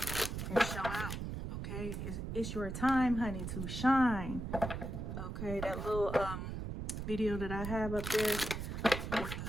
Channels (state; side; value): noise; right; rumble, 5 dB below the sound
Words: and show out, okay? It's your time, honey, to shine, okay? That little video that I have up there with